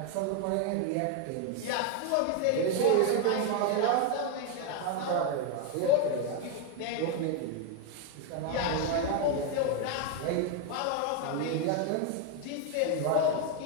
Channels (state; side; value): different; both; correlation 0.01